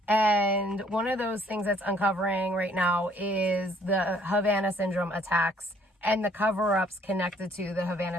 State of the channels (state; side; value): normal; both; correlation 0.61